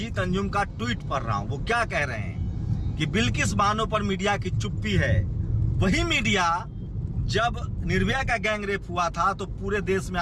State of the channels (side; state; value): both; identical; correlation 1.00